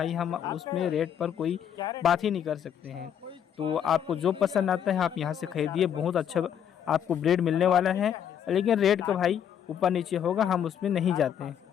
हम उसमें रेट पर कोई बात ही नहीं कर सकते हैं। तो आपको जो पसंद आता है आप यहाँ से खरीदिए, बहुत अच्छा आपको ब्रीड मिलने वाला है। लेकिन रेट का भाई ऊपर नीचे होगा, हम उसमें नहीं जाते हैं।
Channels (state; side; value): quieter; right; 9.0 dB